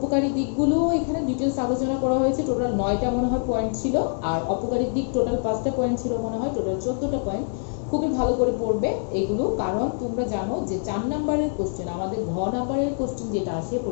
দিকগুলো এখানে ডিটেলস আলোচনা করা হয়েছে। টোটাল 9টা মনে হয় পয়েন্ট ছিল, আর অপকারী দিক টোটাল 5টা পয়েন্ট ছিল মনে হয়, টোটাল 14টা পয়েন্ট। খুবই ভালো করে পড়বে এগুলো, কারণ তোমরা জানো যে 4 নাম্বারের কোশ্চেন, আমাদের ঘ নাম্বারের কোশ্চেন যেটা আসে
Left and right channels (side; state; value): right; silent; digital silence